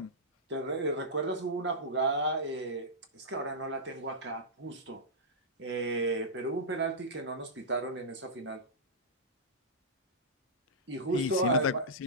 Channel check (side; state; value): both; normal; correlation -0.14